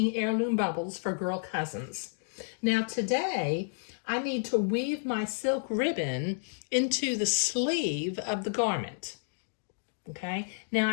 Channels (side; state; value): right; silent; digital silence